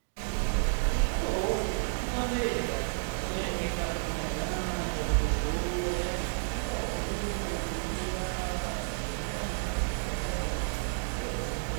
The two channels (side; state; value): left; silent; digital silence